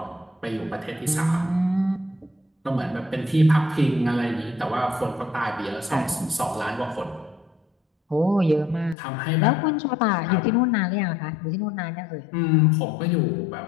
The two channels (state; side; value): drops out; right; at 9.0 s